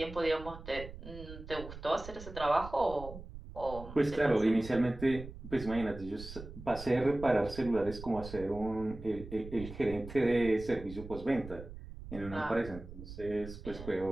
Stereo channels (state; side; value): noise; right; rumble, 13 dB below the sound